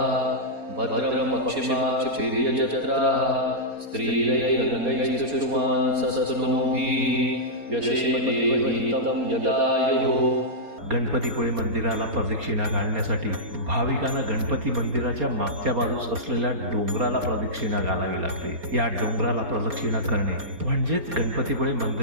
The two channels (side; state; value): left; late; 4.3 ms